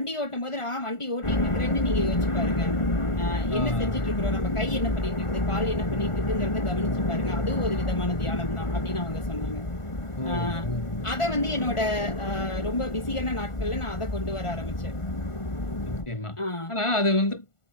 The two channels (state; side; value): late; right; 1.4 ms